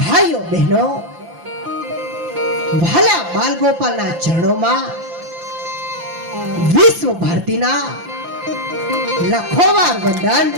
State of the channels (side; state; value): left; late; 5.8 ms